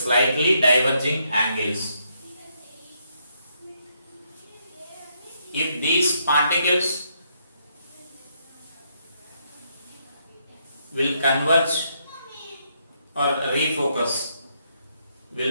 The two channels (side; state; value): both; inverted; correlation -0.76